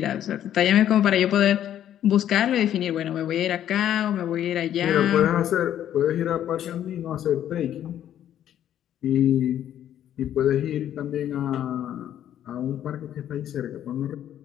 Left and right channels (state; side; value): quieter; right; 10.9 dB